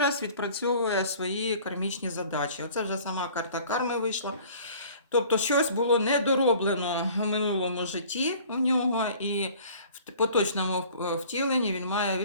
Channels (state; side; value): inverted; both; correlation -0.49